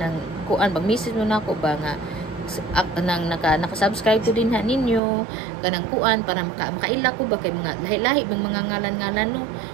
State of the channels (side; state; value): left; drops out; at 5.0 s